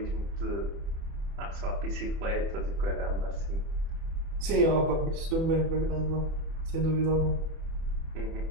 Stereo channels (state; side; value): late; left; 31 ms